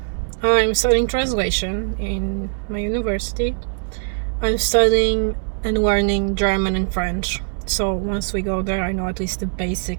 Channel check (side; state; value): left; silent; 65 dB below the other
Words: I'm studying translation in my university. I'm studying and learning German and French. So once we go there, I know at least the